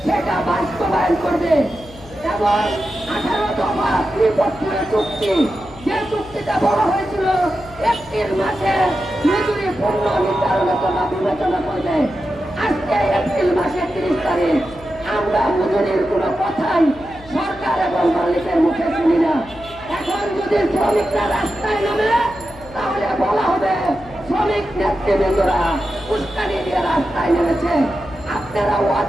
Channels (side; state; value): left; noise; hum, 20 dB below the sound